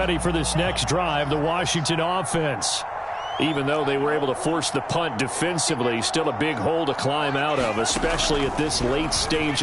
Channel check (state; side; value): identical; both; correlation 1.00